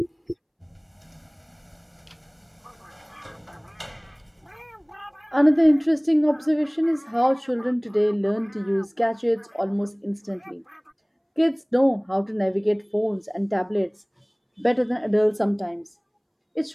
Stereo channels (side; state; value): both; identical; correlation 1.00